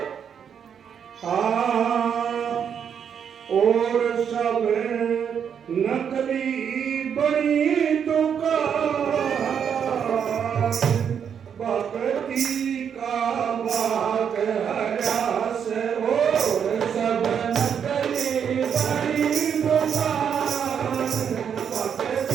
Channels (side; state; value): left; quieter; 7.8 dB